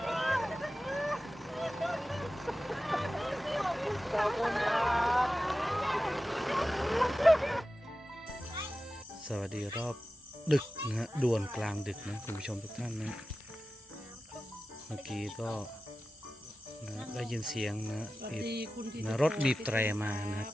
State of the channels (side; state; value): both; normal; correlation 0.94